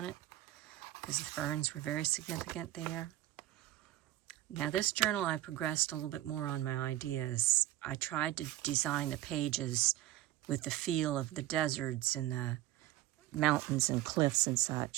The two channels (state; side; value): quieter; left; 15.0 dB